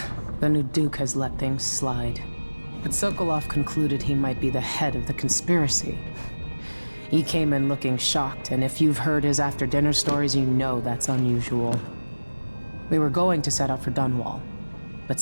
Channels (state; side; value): inverted; both; correlation -1.00